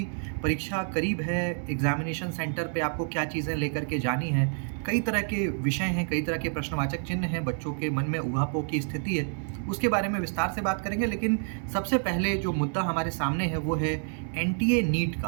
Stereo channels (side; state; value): left; silent; 59 dB below the other